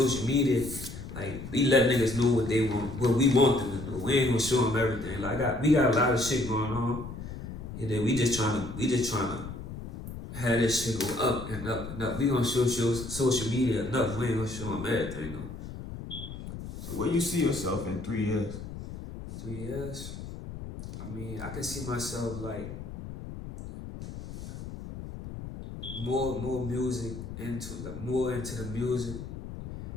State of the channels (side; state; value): left; noise; rumble, 10 dB below the sound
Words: media, like, we let niggas know what they want, what we want them to do. We ain't gonna show them everything. Like, we got a lot of shit going on. You dig? We just trying to have this shit go up and up and up. We gonna show social media enough. We ain't gonna show them everything though. So where you see yourself in 3 years? 3 years? I mean, I can see myself like more music more into the music